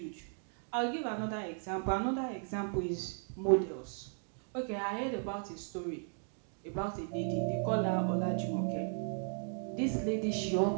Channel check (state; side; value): silent; left; 54 dB below the other